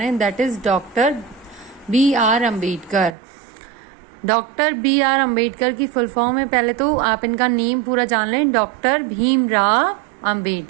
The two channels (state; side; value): drops out; left; at 3.2 s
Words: हैं, that is doctor B R Ambedkar. Doctor B R Ambedkar की फुल फॉर्म है, पहले तो आप इनका नेम पूरा जान लें, डॉक्टर भीमराव